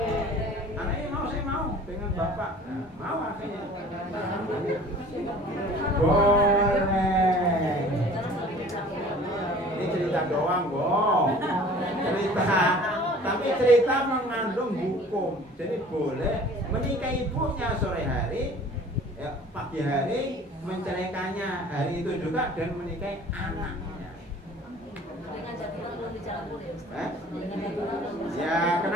Anaknya mau, saya mau dengan bapak. Nah, mau akhirnya. Boleh. Ini cerita doang, Bong. Cerita. Tapi cerita mengandung hukum. Jadi boleh menikahi ibunya sore hari, ya, pagi hari menceraikannya hari itu juga, dan menikahi anaknya. Ya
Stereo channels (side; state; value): both; normal; correlation 0.47